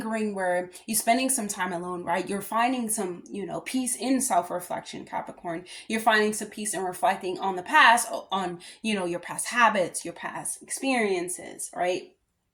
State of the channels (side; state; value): both; identical; correlation 1.00